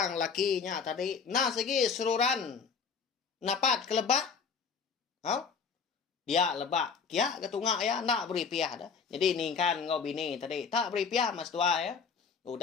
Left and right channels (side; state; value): right; quieter; 5.8 dB